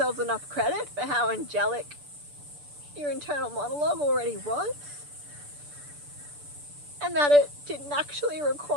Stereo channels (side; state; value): left; late; 6.8 ms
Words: enough credit for how angelic your internal monologue already was, and that it didn't actually